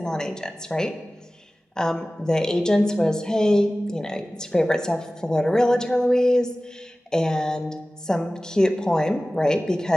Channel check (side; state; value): both; normal; correlation 0.97